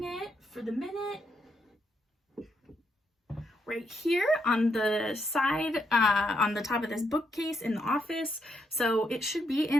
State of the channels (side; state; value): both; normal; correlation 0.78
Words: it for the minute right here on the side, on the top of this bookcase in the office. So it should be